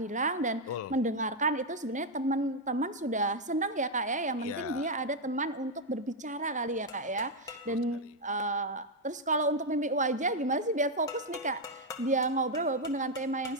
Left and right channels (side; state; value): both; normal; correlation 0.01